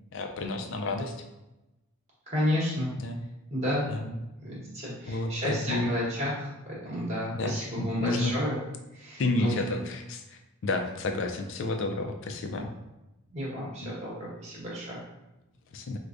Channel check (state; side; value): normal; both; correlation 0.47